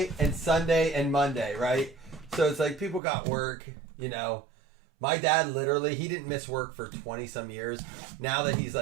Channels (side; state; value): left; drops out; at 3.0 s